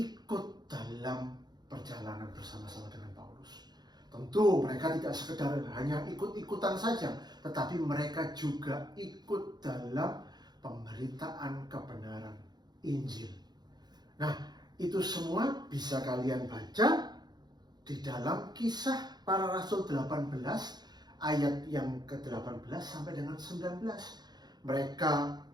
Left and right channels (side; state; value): left; late; 0.20 ms